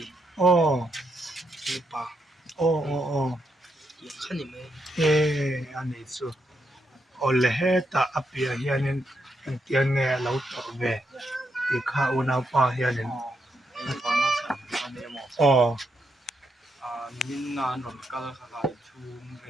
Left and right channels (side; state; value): both; normal; correlation 0.81